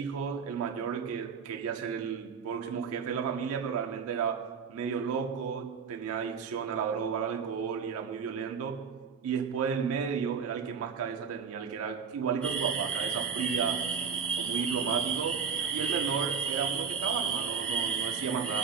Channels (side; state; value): left; quieter; 6.3 dB